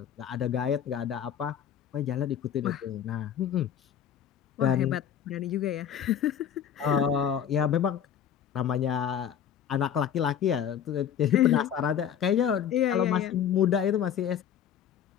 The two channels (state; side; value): quieter; right; 9.0 dB